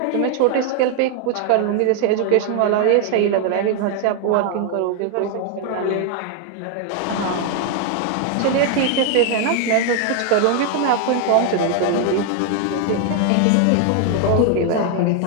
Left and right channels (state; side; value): different; both; correlation 0.00